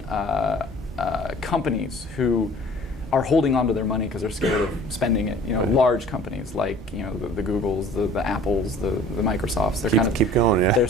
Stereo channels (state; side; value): normal; both; correlation 0.49